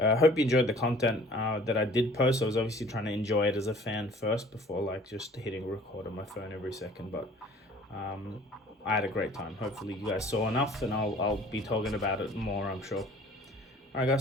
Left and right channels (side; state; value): both; normal; correlation 0.51